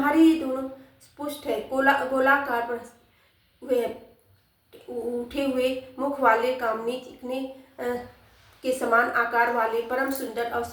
ये दोनों पुष्ट है, गोलाकार पर हुए उठे हुए मुख वाले, कामनी चिकने के समान आकार वाले, परम सुंदर और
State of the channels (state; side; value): identical; both; correlation 1.00